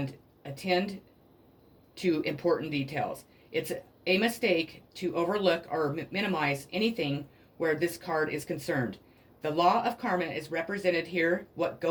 attend to important details. It's a mistake to overlook or minimize anything where this card is concerned. The law of karma is represented here. What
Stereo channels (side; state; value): both; identical; correlation 1.00